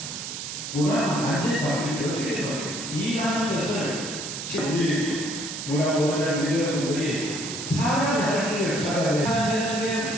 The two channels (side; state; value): right; noise; hiss, 7 dB below the sound